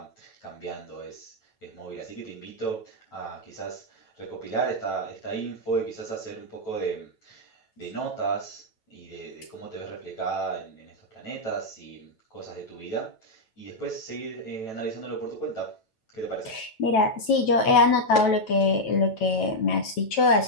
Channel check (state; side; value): late; right; 9.1 ms